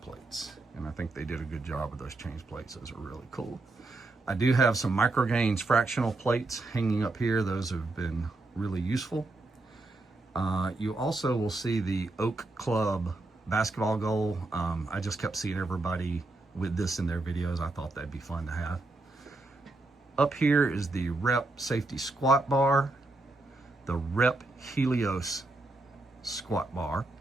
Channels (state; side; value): quieter; left; 3.0 dB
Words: plates. And I think they did a good job with those change plates. Those are really cool. I do have some Microgains fractional plates hanging up here. Those have been really useful. You also will see the Oak Club basketball goal. I just kept seeing everybody with this in their videos. I thought that'd be fun to have. Up here is the Rep Safety Squat Bar, the Rep Helios Squat Bar,